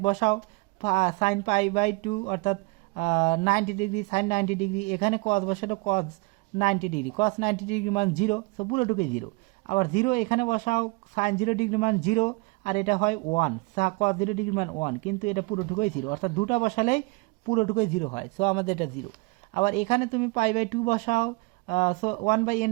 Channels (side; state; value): left; quieter; 27.3 dB